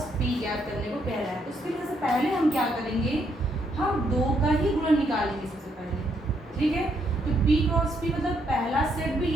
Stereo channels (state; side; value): normal; both; correlation 0.74